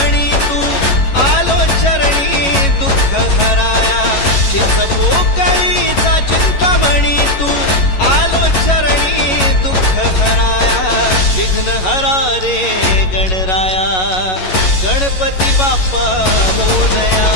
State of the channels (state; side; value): late; right; 11 ms